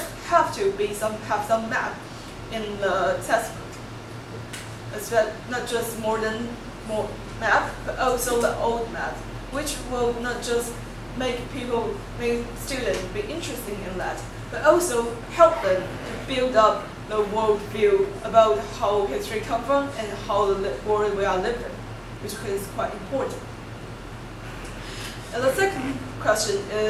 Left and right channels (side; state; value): both; identical; correlation 1.00